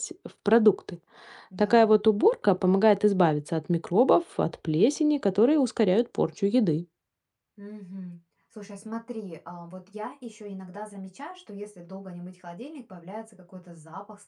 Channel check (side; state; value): both; identical; correlation 1.00